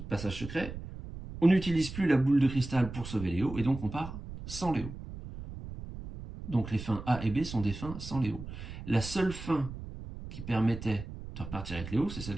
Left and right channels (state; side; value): noise; right; rumble, 11 dB below the sound